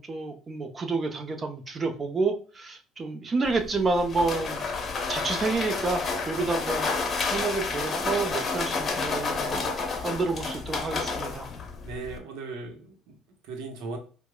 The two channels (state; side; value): normal; both; correlation 0.68